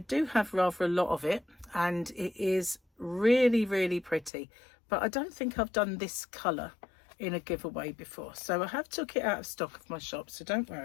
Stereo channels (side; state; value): right; drops out; at 4.3 s